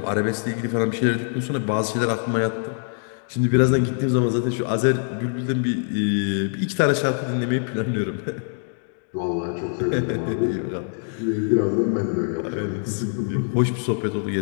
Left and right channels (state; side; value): silent; right; 61 dB below the other